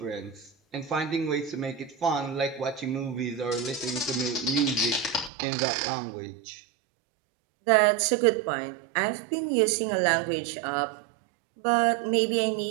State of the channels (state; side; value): drops out; left; at 5.3 s